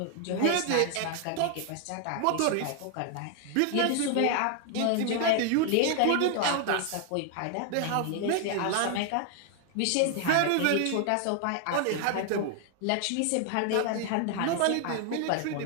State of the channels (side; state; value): both; different; correlation 0.00